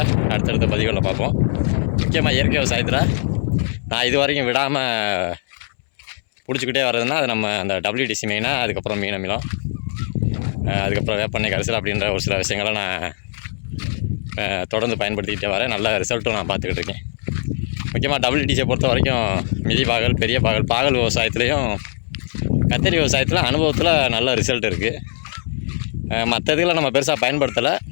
அடுத்தடுத்த பதிவுகளில் பார்ப்போம். முக்கியமாக இயற்கை விவசாயத்தில் நான் இது வரைக்கும் விடாமல் பிடிச்சிக்கிட்டே வர்றதுன்னா அது நம்ம அந்த WDC மெயினாக, அதுக்கப்புறம் மீன் அமிலம், அதுக்கப்புறம் வேப்பெண்ணெய் கரைசல் அப்படின்ற ஒரு சில விஷயங்களை நான் தொடர்ந்து பயன்படுத்திக்கிட்டே வரேன். நல்ல ரிசல்ட்டும் நான் பார்த்துக்கிட்டு இருக்கேன். முக்கியமாக WDCயை பொறுத்த வரைக்கும் மிதி பாகல், பெரிய பாகல் விவசாயத்துலேயும் கத்தரி விவசாயத்தில் அனுபவத்தில் நல்ல ரிசல்ட் இருக்குது. மற்ற இதுகளை நம்ம பெருசாக பயன்படுத்தலை,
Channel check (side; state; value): right; silent; 65 dB below the other